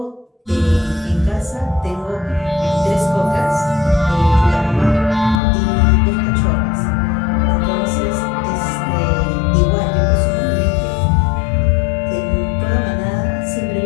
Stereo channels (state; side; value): drops out; right; at 5.4 s